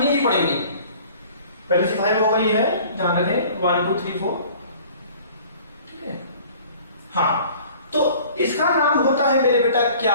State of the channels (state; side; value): inverted; both; correlation -0.49